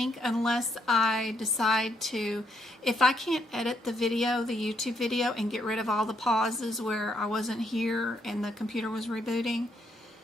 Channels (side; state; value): both; normal; correlation 0.75